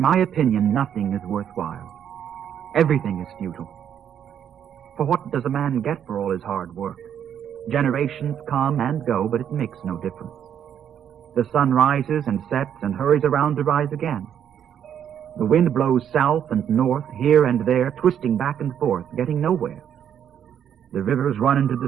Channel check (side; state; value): left; quieter; 9.1 dB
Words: opinion, nothing is worthwhile. Everything is futile. For what does a man get for all his hard work? Generations come and go, but it makes no difference. The sun rises and sets and hurries around to rise again. The wind blows south and north, here and there, twisting back and forth, getting nowhere. The rivers run into